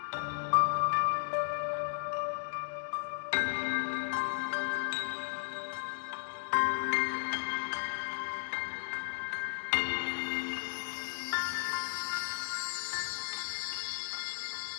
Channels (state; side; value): silent; right; digital silence